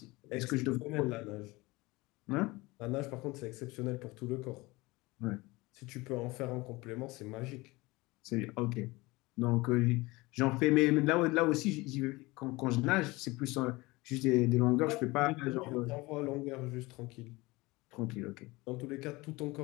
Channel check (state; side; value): quieter; right; 22.2 dB